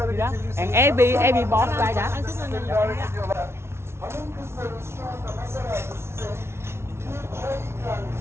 geçebilirsiniz. And every boss like that. Hanım kızlarımız şu anda masalarda size çay ikram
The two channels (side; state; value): left; late; 0.12 ms